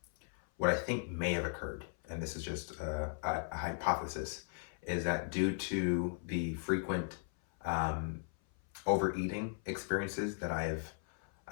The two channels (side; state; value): right; silent; 53 dB below the other